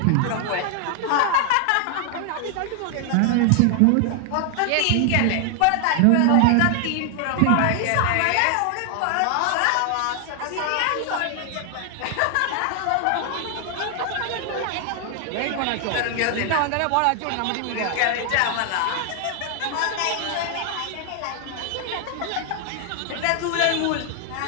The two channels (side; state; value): both; different; correlation 0.00